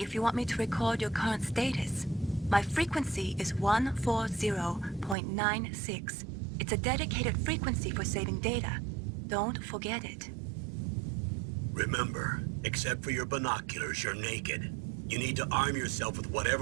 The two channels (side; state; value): left; drops out; at 5.2 s